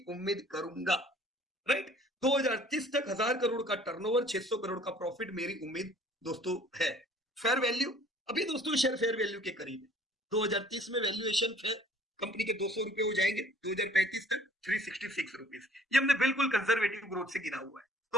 उम्मीद करूंगा, राइट। 2030 तक 1000 करोड़ का टर्नओवर, 600 करोड़ का प्रॉफिट मेरी उम्मीद दोस्तों है। फेयर वैल्यू अभी दोस्तों शेयर फेयर वैल्यू के करीब है। 2030 में वैल्यूएशन फेयर कंपनी के 200 रुपए हो जाएंगे, 2035 तक 366 रुपीज। ये हमने बिल्कुल कंजर्वेटिव ग्रोथ से गिरा हुआ है।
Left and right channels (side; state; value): both; normal; correlation 0.55